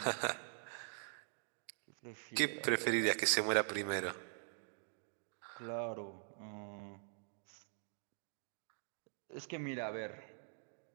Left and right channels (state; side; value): silent; left; digital silence